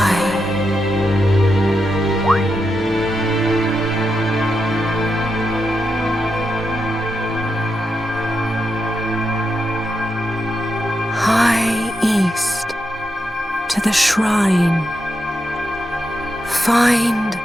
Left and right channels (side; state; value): both; normal; correlation 0.85